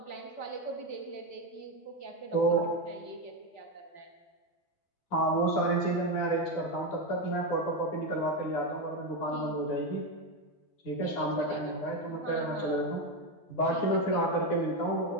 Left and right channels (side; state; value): right; late; 12 ms